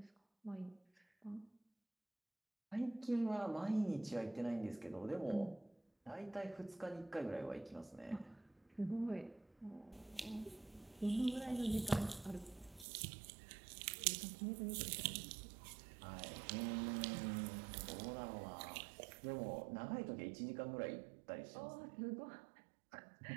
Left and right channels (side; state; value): left; drops out; at 12.9 s